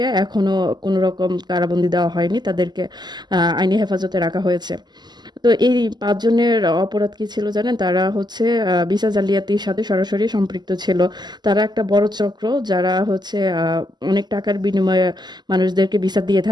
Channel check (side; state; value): left; late; 0.21 ms